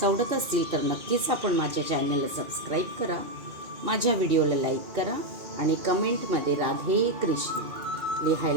आवडत असतील तर नक्कीच आपण माझ्या चॅनलला सबस्क्राईब करा, माझ्या व्हिडिओला लाईक करा आणि कमेंटमध्ये राधे कृष्ण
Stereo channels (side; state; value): left; late; 2.6 ms